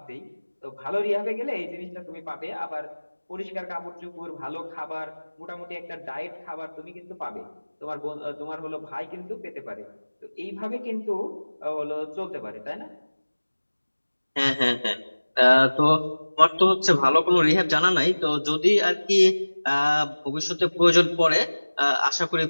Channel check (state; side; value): inverted; both; correlation -1.00